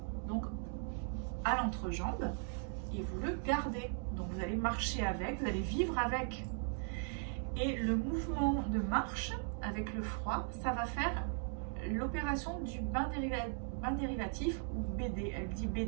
donc à l'entrejambe et vous le gardez. Donc vous allez marcher avec, vous allez vivre avec. Et le mouvement de marche avec le froid, ça va faire l'opération du bain dérivatif ou BD. Elle dit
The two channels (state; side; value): silent; left; 52 dB below the other